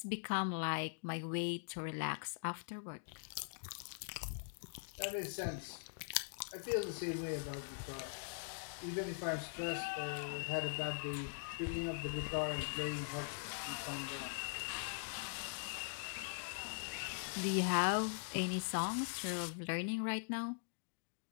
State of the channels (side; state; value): right; silent; digital silence